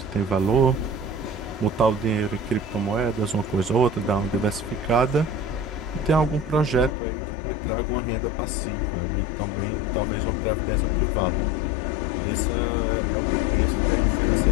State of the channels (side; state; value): right; drops out; at 7.0 s